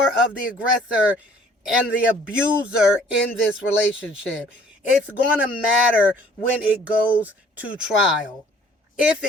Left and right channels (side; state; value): both; normal; correlation 0.56